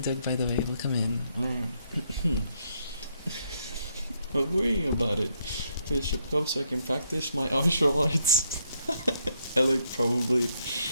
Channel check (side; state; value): both; inverted; correlation -0.74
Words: by the way, welcome in. But worrying about it. Finish up cup so I can practice my martial arts. Alec probably.